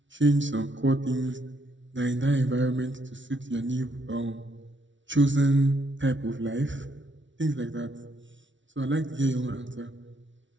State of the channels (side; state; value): left; late; 0.55 ms